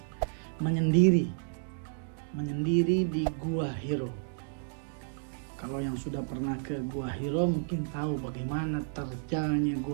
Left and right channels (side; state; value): left; silent; digital silence